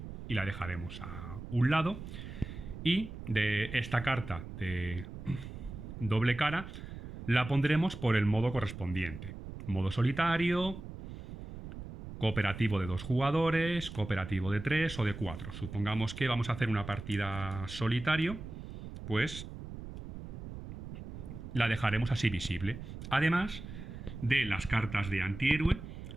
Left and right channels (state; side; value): noise; right; rumble, 10 dB below the sound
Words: y la dejaremos a un lado. Y de esta carta de doble cara la pondremos por el modo correspondiente. Modo solitario, cooperativo de 2 jugadores, cooperativo de 3 o de 4. Supongamos que vamos a hacer una partida solitario, pues la dejaremos así visible. Además de las cartas de antihéroe,